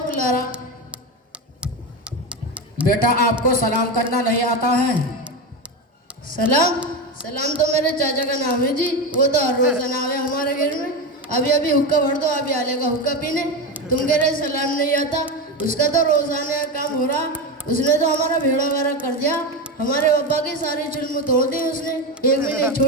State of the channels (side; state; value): both; normal; correlation 0.17